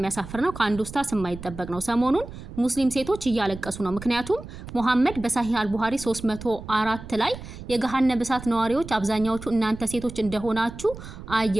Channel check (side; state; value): right; noise; rumble, 13 dB below the sound